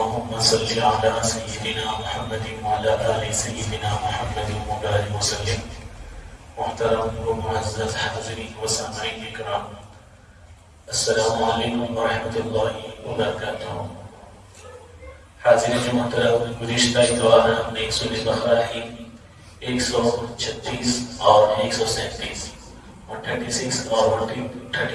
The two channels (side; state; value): both; identical; correlation 1.00